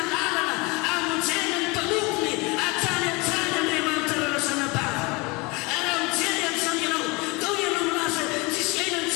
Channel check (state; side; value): quieter; right; 26.3 dB